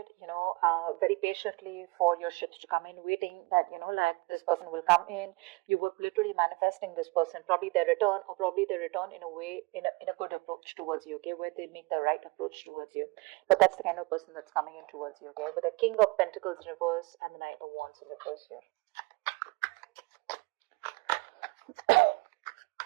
very patiently for your ships to come in, waiting that, like this person will come in. You were literally manifesting this person, probably their return, or probably their return in a way, in a good approach towards you, okay, where they make the right approach towards you. But that's the kind of person that's coming in towards you, okay, with the King of Pentacles in reverse and the Knight of Wands in reverse here.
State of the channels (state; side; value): quieter; left; 26.7 dB